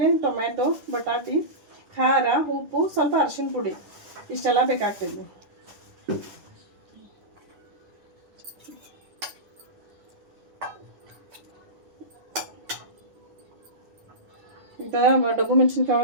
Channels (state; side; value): late; left; 10 ms